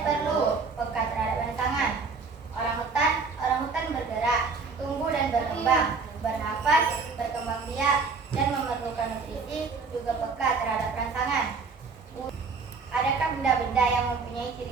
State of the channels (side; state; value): left; quieter; 4.7 dB